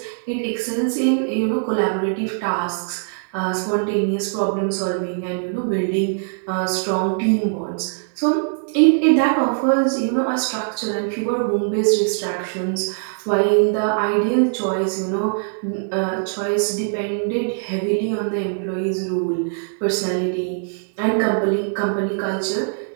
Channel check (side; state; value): left; silent; 65 dB below the other